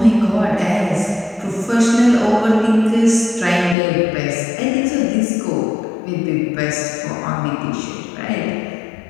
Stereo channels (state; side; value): drops out; right; at 3.8 s